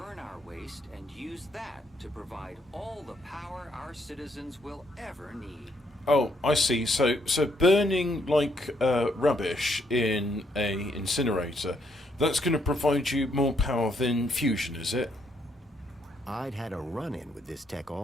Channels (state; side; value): normal; both; correlation 0.73